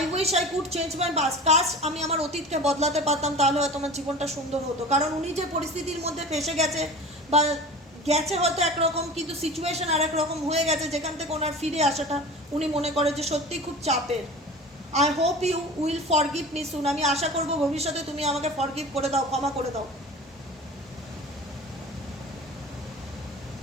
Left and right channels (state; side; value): normal; both; correlation 0.36